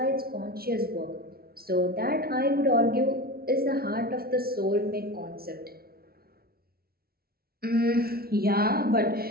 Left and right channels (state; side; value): late; left; 0.44 ms